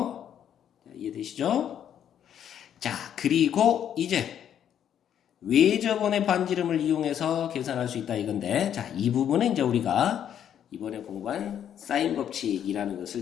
자, 이해되시죠? 자, 그리고 이제 외접원의 반지름을 이용해서 계산할 수 있다 이건데, 자, 이 부분은 이제 우리가 이번에 공부한 사인 법칙이라는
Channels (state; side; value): quieter; right; 9.6 dB